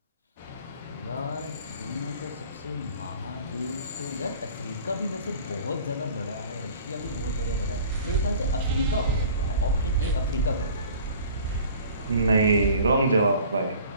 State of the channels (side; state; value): both; inverted; correlation -0.47